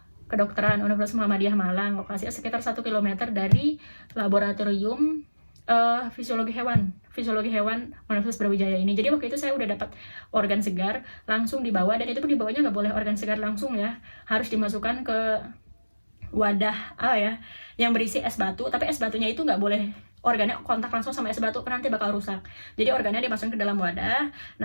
Kedokteran Universitas Muhammadiyah Malang, lokasinya sekitar 1 km dari laboratorium fisiologi hewan Universitas Brawijaya ini. Jadi waktu itu saya udah dapat organ segar langsung dibawa, dan itu pun dibawanya nggak boleh organ segar langsung ya, harus dimasukkan ke wadah yang berisi es batu, tapi es batunya itu nggak boleh organnya kontak langsung sama es batu, nanti bakal rusak. Jadi organnya dimasukkan ke dalam wadah,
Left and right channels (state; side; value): inverted; both; correlation -1.00